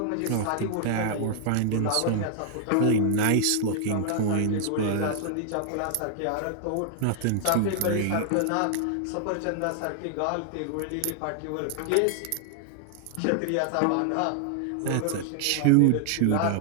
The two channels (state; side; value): different; both; correlation -0.01